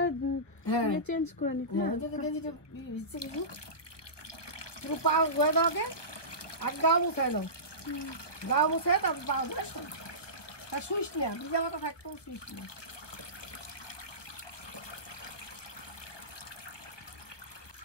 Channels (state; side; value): late; right; 1.0 ms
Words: চেঞ্জ করে নিতে পাও ধুয়ে দাও আগে, আর গাও মুছাই দাও, গাও মুছে তারপর পাও ধুয়ে তা শুইস না, ভিজা মাথা থাকতেও শুইস না।